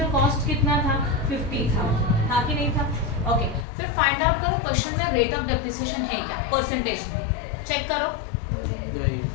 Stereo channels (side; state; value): right; drops out; at 3.7 s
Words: कॉस्ट कितना था, 50,000 था कि नहीं था. ओके. फिर फाइंड आउट करो क्वेश्चन में रेट ऑफ डेप्रिसिएशन है क्या, परसेंटेज में. चेक करो,